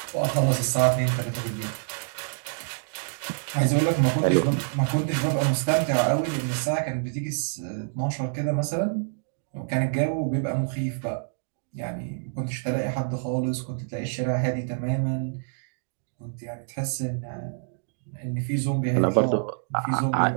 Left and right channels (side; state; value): left; silent; digital silence